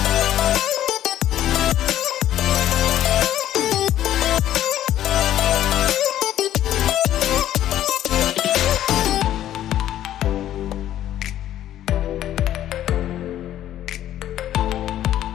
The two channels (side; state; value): right; quieter; 12.2 dB